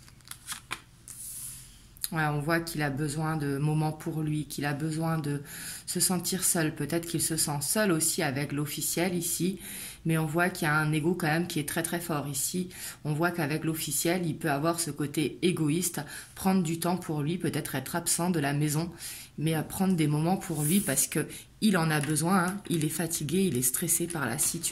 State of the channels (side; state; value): both; identical; correlation 1.00